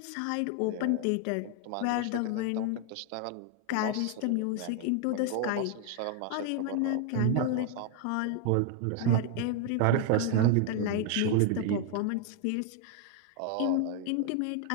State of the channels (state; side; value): different; both; correlation 0.00